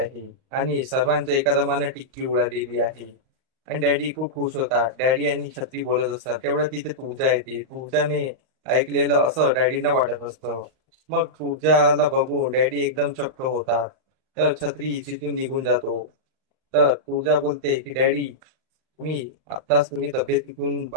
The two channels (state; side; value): late; left; 38 ms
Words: आणि सर्वांच्या एका दमानं टिक्की उडालेली आहे. आणि डॅडी खूप खुश होतात. डॅडी आणि छत्री बोलत असतात, तेवढं तिथे तुळजा येते. तुळजाने ऐकलेलं असं डॅडींना वाटत असतं. मग तुळजाला बघून डॅडी एकदम चक्क होतात. तर छत्री तिथून निघून जातो. तर तुळजा बोलते की डॅडी तुम्ही तब्येतीतून